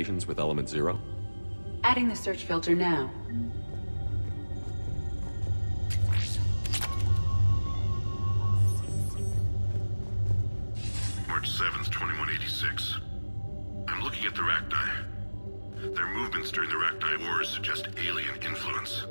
with element 0? Adding the search filter now. March 7th, 2186. I'm looking at the Rachni. Their movements during the Rachni Wars suggest alien influence.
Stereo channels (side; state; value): both; inverted; correlation -1.00